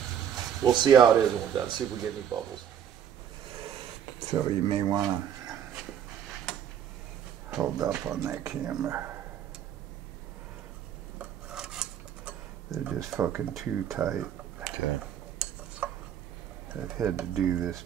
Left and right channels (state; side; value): quieter; left; 9.2 dB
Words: we'll see how it is when we're done, see if we get any bubbles. So you may want to hold up on that camera. They're just fucking too tight. Okay. I've had to do this